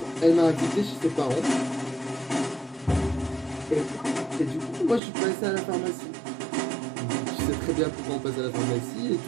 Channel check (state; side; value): drops out; left; at 5.0 s